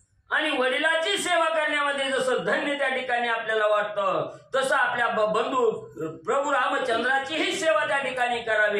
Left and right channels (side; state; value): both; identical; correlation 1.00